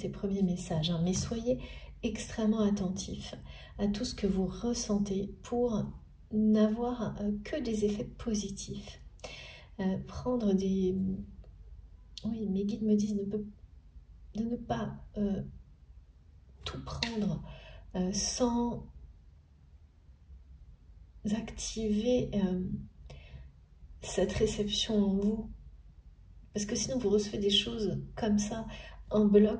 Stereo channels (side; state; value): both; identical; correlation 1.00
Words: ces premiers messages, hein, mais soyez extrêmement attentifs à tout ce que vous ressentez pour n'avoir que des effets positifs. Prendre des... Oui, mes guides me disent de ne pas tout prendre sans activer cette réception en vous. Parce que sinon, vous recevez des choses comme ça, en